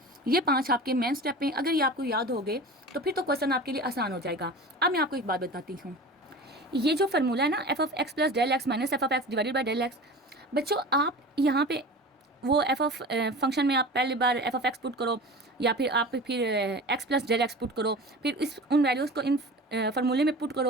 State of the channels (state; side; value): normal; both; correlation 0.35